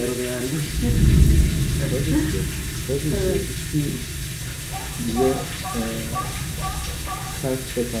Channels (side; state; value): both; identical; correlation 1.00